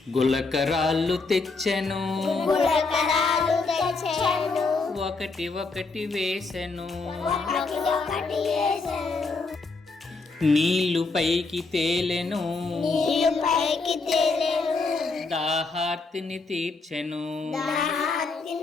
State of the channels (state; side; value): quieter; right; 4.0 dB